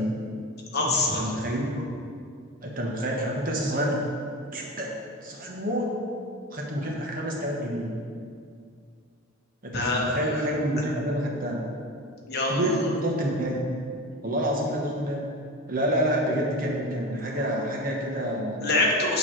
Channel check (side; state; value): both; normal; correlation 0.27